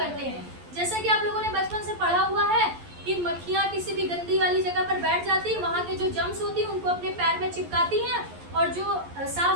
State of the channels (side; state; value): left; late; 11 ms